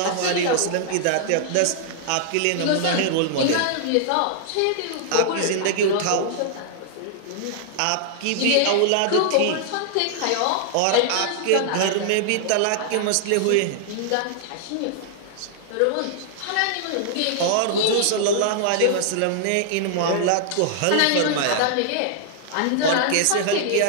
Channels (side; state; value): both; different; correlation -0.01